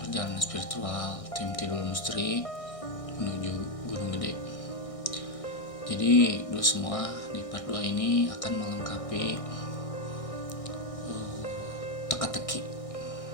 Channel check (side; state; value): right; late; 1.6 ms